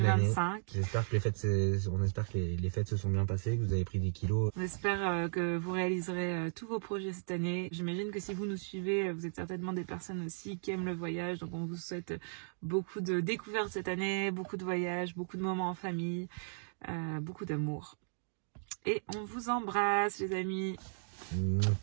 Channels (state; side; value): silent; left; digital silence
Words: année. J'espère que les fêtes se sont bien passées, que vous avez pris des kilos. On espère que vous réaliserez tous vos projets cette année. J'imagine que si vous nous suivez, vous êtes certainement des personnes aussi qui aiment le voyage. Donc on vous souhaite beaucoup de découvertes cette année, beaucoup de voyages, beaucoup de moments en famille, beaucoup d'amour. Et on vous embrasse les amis.